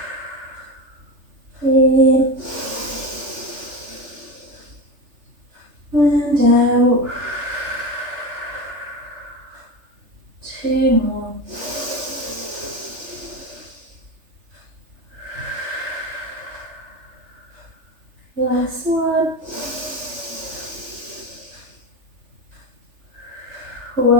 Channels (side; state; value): left; late; 3.3 ms